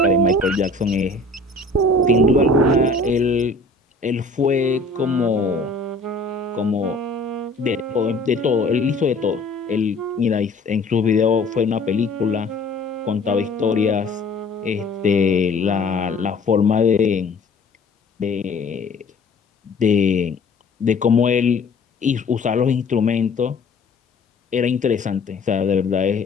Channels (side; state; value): right; quieter; 3.2 dB